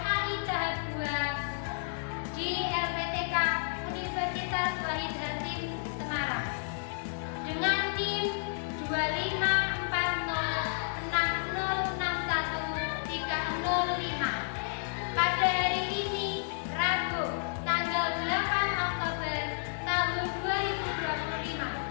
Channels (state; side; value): silent; right; digital silence